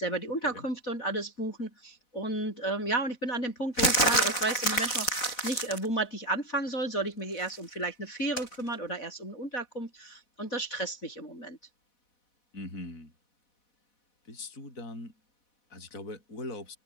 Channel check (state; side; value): late; right; 4.1 ms